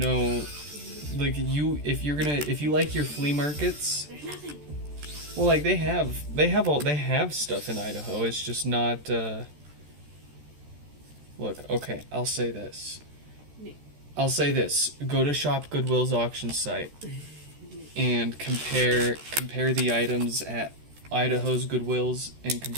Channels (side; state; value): left; late; 13 ms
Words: like if you like your flea markets. There's nothing. Well, like they have stuff in Idaho. It's just not. Look, okay, I'll say this. Go to Shop Goodwill's auction site and compare the items at Idaho's Goodwills and